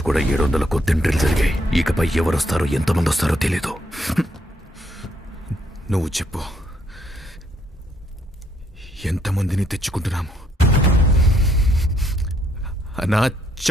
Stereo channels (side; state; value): both; normal; correlation 0.71